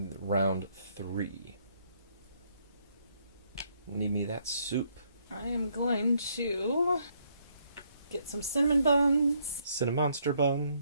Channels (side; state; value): both; inverted; correlation -0.71